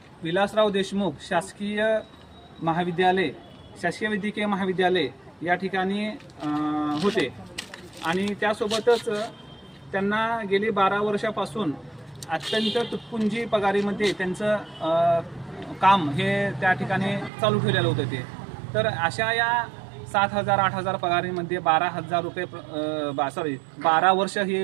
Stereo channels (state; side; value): drops out; left; at 17.3 s